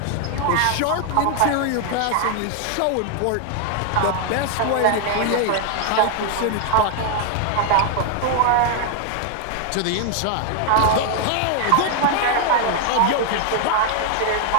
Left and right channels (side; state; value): both; different; correlation 0.00